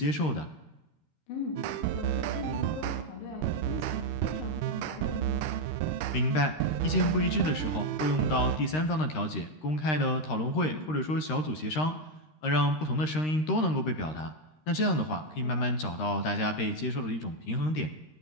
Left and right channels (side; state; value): right; late; 13 ms